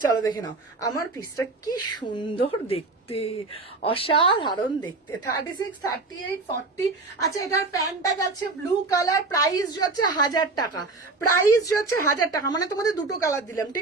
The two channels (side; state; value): left; quieter; 3.5 dB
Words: চলো দেখে নাও আমার পিসটা কি সুন্দর দেখতে, অসাধারণ দেখতে। 36, 38, 40। আচ্ছা এটার প্যান্টটা যাচ্ছে ব্লু কালার, প্রাইস যাচ্ছে 1000 টাকা, প্রাইস যাচ্ছে 1000 টাকা। মানে তোমাদের দুটো কালার দিলাম,